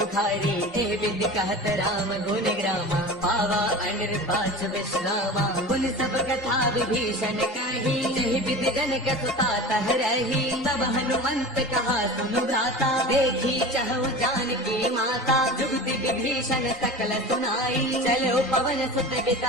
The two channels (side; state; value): both; normal; correlation 0.34